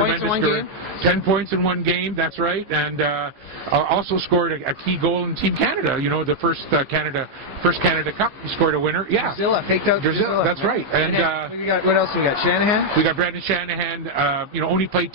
career. 10 points in 1 game. That's right, and also scored a key goal in Team Canada. You know, the first Canada Cup. He scored a winner. Yeah, Drusilla, faked out Drusilla. That's right. And what else we got? Shanahan. We got Brendan Shanahan. You know, only played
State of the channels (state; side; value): late; left; 15 ms